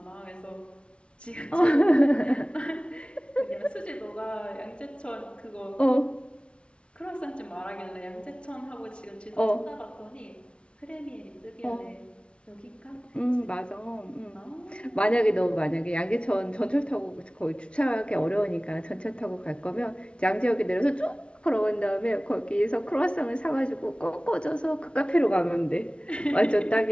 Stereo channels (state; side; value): late; right; 0.059 ms